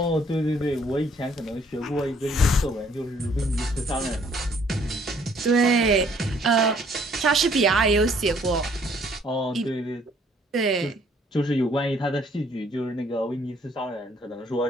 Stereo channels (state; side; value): normal; both; correlation 0.62